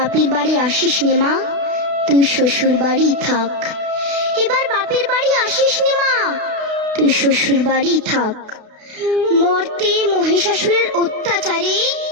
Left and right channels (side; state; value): left; late; 32 ms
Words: বাড়ি আসিস নে মা, তুই শ্বশুর বাড়ি থাক। এবার বাপের বাড়ি আসিস নে মা, তুই শ্বশুর বাড়ি থাক। মর্তে মহিষাসুরের অত্যাচারে